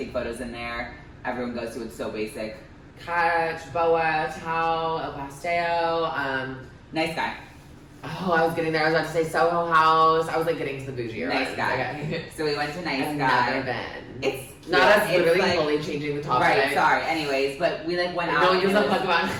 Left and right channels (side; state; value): both; identical; correlation 1.00